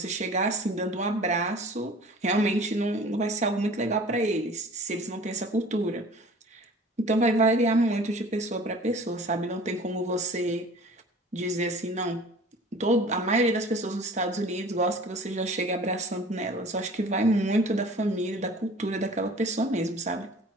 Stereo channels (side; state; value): both; normal; correlation 0.45